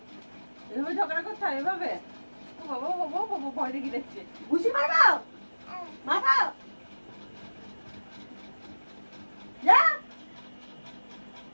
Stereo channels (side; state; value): both; inverted; correlation -1.00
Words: এভাবে ঝগড়া করতে হয় এভাবে? ও বাবা ও বাবা ও বাবা ভয় দেখি দেখছে। ঘুষি মারো মারো যা